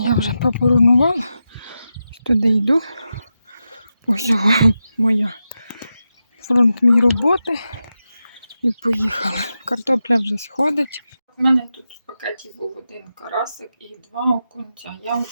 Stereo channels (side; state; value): both; inverted; correlation -0.89